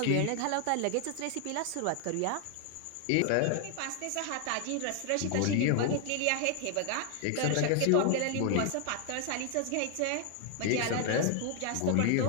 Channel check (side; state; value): both; different; correlation 0.00